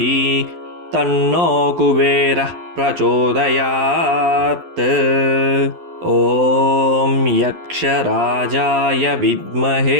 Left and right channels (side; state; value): left; late; 11 ms